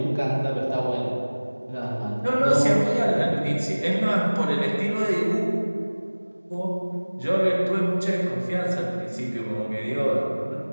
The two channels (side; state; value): both; inverted; correlation -1.00